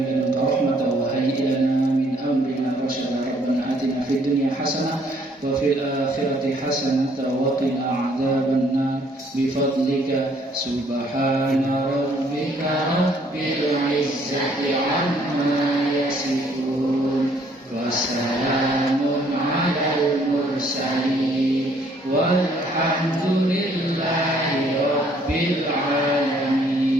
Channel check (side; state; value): both; normal; correlation 0.64